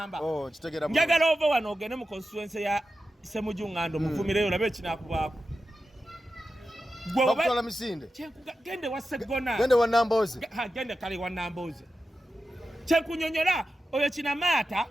njagala ova wano ogende mu constituency ya Ssemujjuŋŋando muvumireyo olabe ekinaakubaako bakutwala misinde gende wa Segona gende wa Nambooze gende kale wa Nambooze kyenkunyonyola oyo kinamaata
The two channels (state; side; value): normal; both; correlation 0.92